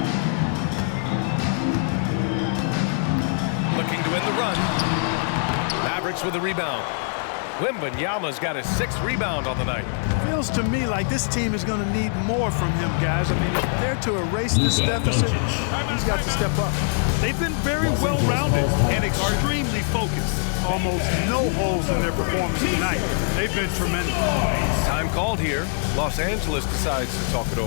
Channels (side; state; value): right; silent; digital silence